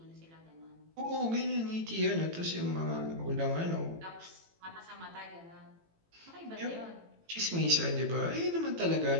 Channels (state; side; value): late; left; 18 ms